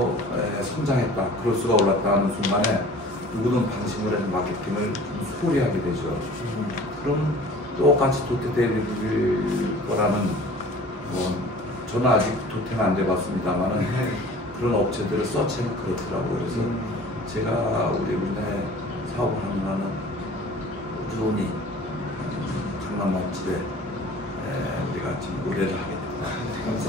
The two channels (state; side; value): normal; both; correlation 0.46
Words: 성장했다, 그럴수가 올랐다 하는 순간에 누구든 방심을 해서 마케팅을 좀 소홀히 하게 되죠. 그럼 똑같이 도태될 거라는 저는 아직 도태는 안 돼봤습니다만은 그런 업체들을 서치하면 그렇더라고요. 그래서 제가 우리나라에 사업을 하는 한은 꾸준히 강남 맛집에 우리가 지금 의뢰를 하게 됩니다.